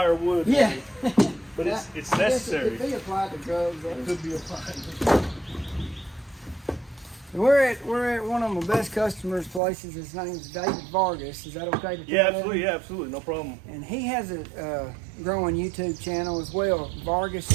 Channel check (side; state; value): left; drops out; at 9.6 s